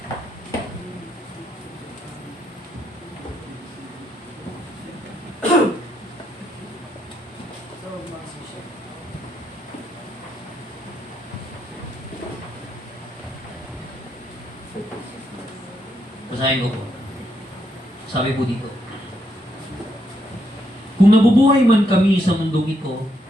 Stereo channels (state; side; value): normal; both; correlation 0.77